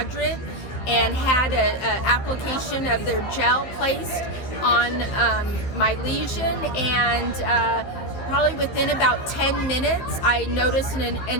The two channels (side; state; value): right; late; 15 ms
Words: and had an application of their gel placed on my lesion, and probably within about 10 minutes I noticed